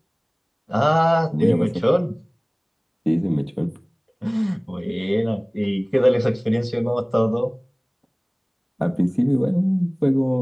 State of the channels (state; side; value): identical; both; correlation 1.00